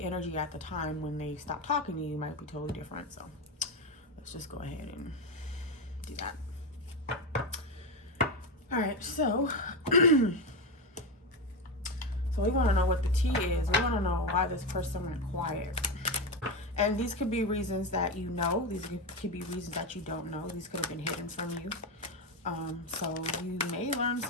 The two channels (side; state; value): both; normal; correlation 0.14